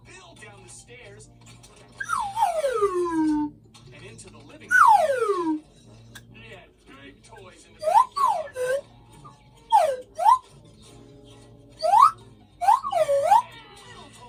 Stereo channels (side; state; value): both; identical; correlation 1.00